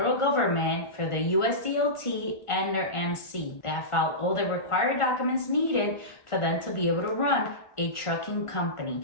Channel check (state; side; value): late; right; 1.4 ms